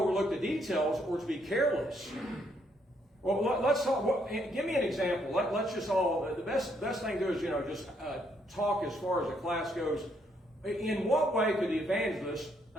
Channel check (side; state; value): both; normal; correlation 0.72